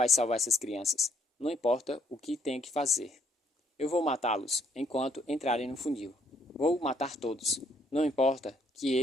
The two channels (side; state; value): both; normal; correlation 0.67